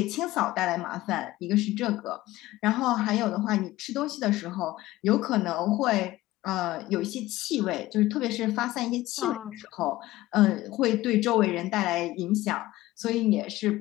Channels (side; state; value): right; quieter; 17.0 dB